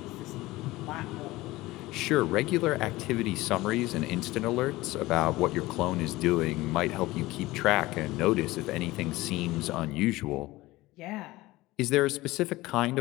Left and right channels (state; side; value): quieter; right; 19.0 dB